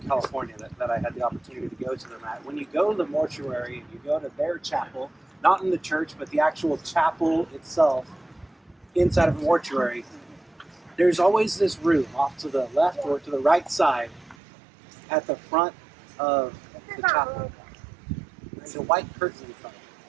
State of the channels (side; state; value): left; drops out; at 14.4 s